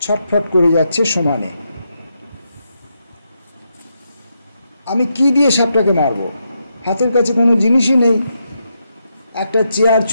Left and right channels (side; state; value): both; inverted; correlation -0.82